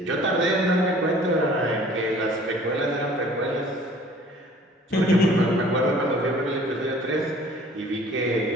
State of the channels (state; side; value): normal; both; correlation 0.51